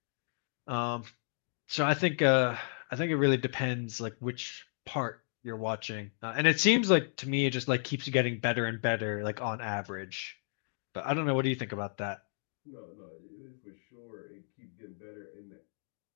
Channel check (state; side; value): silent; right; digital silence